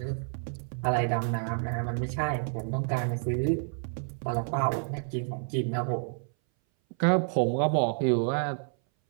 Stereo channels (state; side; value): silent; left; 58 dB below the other